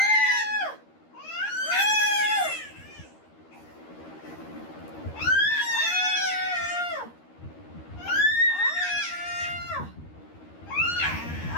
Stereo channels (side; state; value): right; late; 13 ms